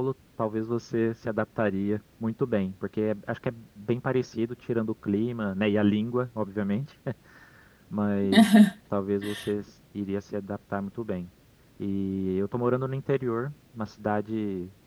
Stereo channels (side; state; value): both; identical; correlation 1.00